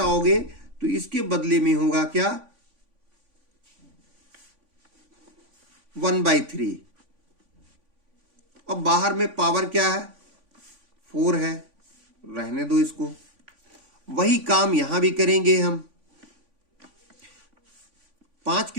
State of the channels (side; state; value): left; late; 3.5 ms